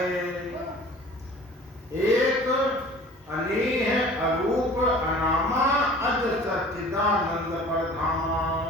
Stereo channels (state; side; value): normal; both; correlation 0.46